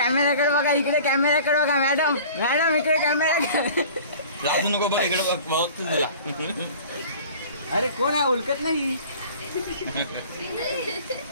बघा इकडे कॅमेराकडे बघा मॅडम मॅडम इकडे कॅमेरा राजू नको बघ इकडे बघ तुला. अरे कोण आहे उलकत नाही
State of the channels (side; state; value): both; inverted; correlation -0.44